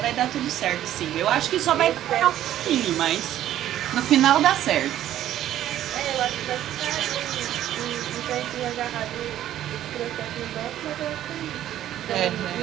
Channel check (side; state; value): left; quieter; 12.3 dB